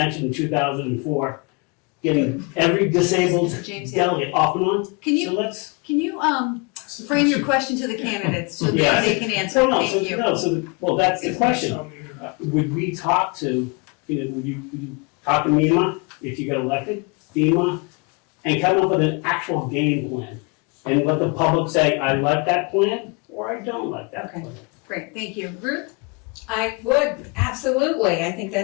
in 2004, getting every disabled James, delegate off and on. Can you So let's. frame your question to the candidates so that Yeah. they can answer? Thank you. Well, that's the question. Would we talk to, would you talk to MEMA if you got elected, FEMA, and come up with an actual game plan? And let the public say, I like that plan, or I don't like that Okay. plan. Great, thank you. Ruth? I would, absolutely. I think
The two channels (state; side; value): quieter; right; 30.6 dB